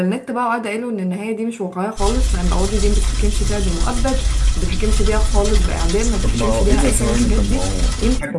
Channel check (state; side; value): identical; both; correlation 1.00